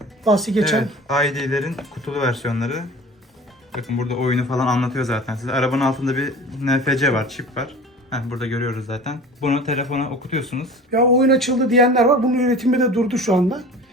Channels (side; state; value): both; normal; correlation 0.40